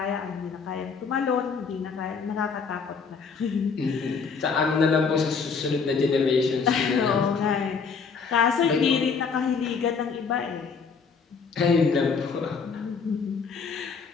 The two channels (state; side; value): quieter; right; 5.5 dB